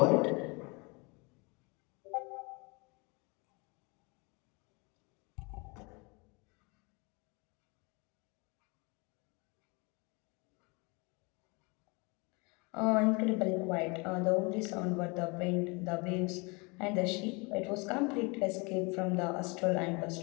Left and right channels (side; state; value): right; quieter; 29.1 dB